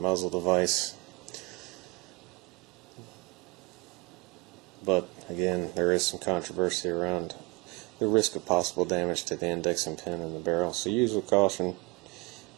device. But again, there is some controversy around the risk of possible damage to the indexing pin in the barrel. So use with caution,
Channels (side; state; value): left; quieter; 25.7 dB